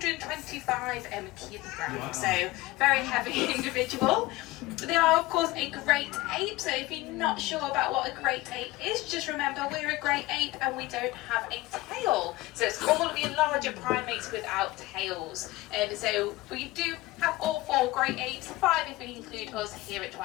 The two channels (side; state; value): right; quieter; 19.3 dB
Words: kilograms, so very heavy individual. They are, of course, a great ape, so if you're not sure about what a great ape is, just remember we're a great ape and we don't have a tail. So it's all of your larger primates without tails. So we do have all 4 great apes, 5 if we include us here at